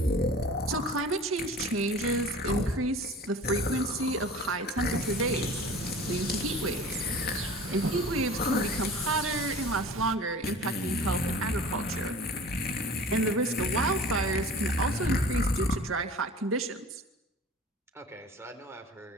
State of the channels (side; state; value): both; normal; correlation 0.41